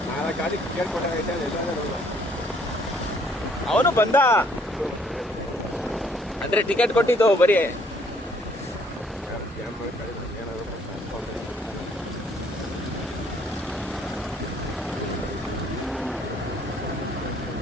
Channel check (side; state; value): both; normal; correlation 0.63